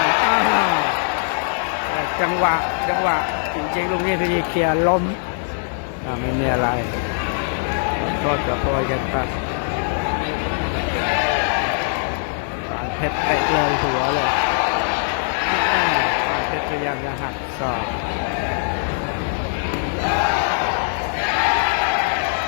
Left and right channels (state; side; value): silent; right; digital silence